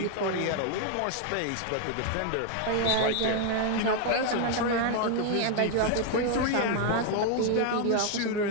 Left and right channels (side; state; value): both; different; correlation 0.00